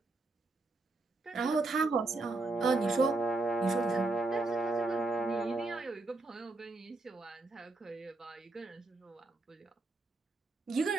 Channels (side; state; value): left; quieter; 3.1 dB